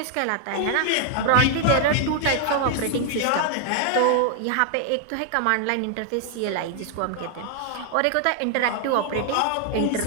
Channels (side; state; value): both; different; correlation 0.00